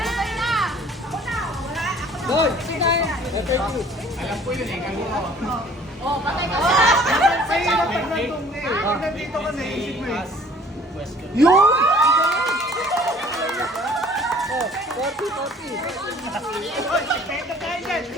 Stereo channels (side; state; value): both; normal; correlation 0.53